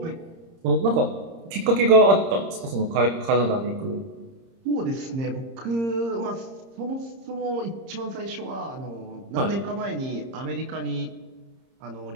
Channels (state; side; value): late; left; 30 ms